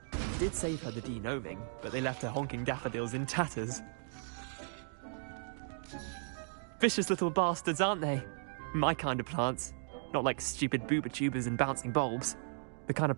It did save her the de-gnoming, but they left her honking daffodils in tatters. Vicious little bastards, aren't they? My kind of plants. Not like stupid booba tubers and bouncing bulbs. The kind of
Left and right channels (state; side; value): silent; left; digital silence